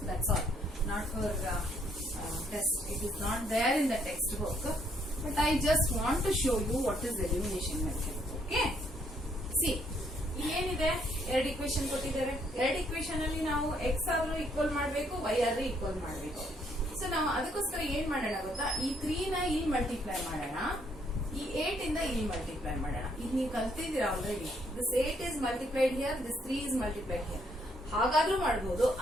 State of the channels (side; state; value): both; normal; correlation 0.69